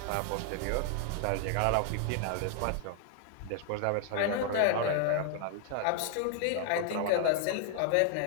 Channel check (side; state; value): both; different; correlation 0.00